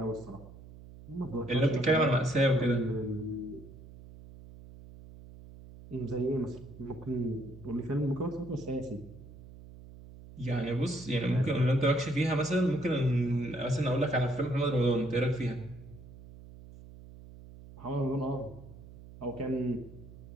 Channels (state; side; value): noise; right; hum, 18 dB below the sound